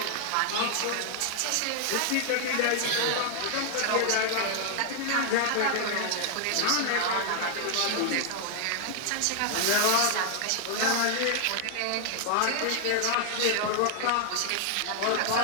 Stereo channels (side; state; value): both; different; correlation 0.00